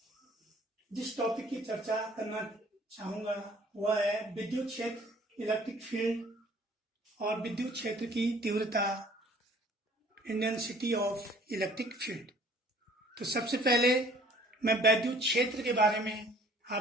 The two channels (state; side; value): normal; both; correlation 0.55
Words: जिस टॉपिक की चर्चा करना चाहूँगा वह है विद्युत क्षेत्र, इलेक्ट्रिक फील्ड और विद्युत क्षेत्र की तीव्रता, इंटेंसिटी ऑफ इलेक्ट्रिक फील्ड। तो सबसे पहले मैं विद्युत क्षेत्र के बारे में